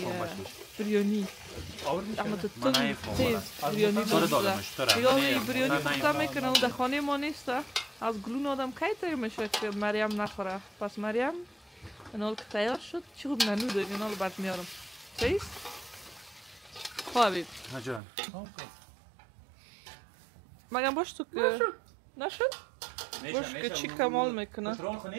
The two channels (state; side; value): drops out; left; at 18.0 s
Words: بریانی اما تو تیز بریانی دلم شده دیگه بریانی پخته میکنه و در خانه ما نیست از گلون آدم کی تیر میشه که مریم نخوره. پس مریم اینال که تیار شد چی خوب ننو داریم اینال برد میارم چیز؟ خواه حبیب جان مگم باش تو که نشد؟ باش که چی کمال میکنه پترون